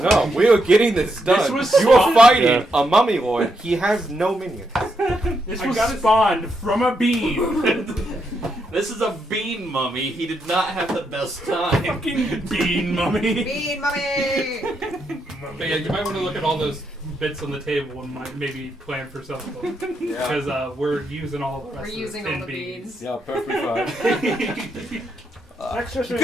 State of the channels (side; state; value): both; normal; correlation 0.80